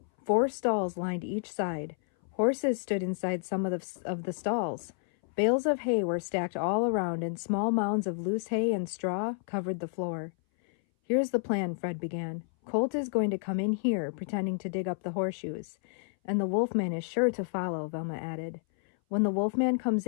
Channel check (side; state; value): right; silent; 58 dB below the other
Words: 4 stalls lined each side. Horses stood inside some of the stalls. Bales of hay were stacked all around, and small mounds of loose hay and straw covered the floor. Here's the plan, Fred began. Colt is going to come in here, pretending to dig up the horseshoes. And the Wolfman is sure to follow, Velma added. When the Wolfman comes